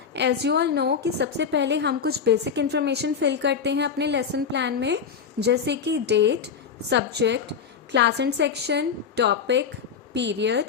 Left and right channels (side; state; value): right; quieter; 6.7 dB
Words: as you all know कि सबसे पहले हम कुछ basic information fill करते हैं अपने lesson plan में, जैसे कि date, subject, class and section, topic,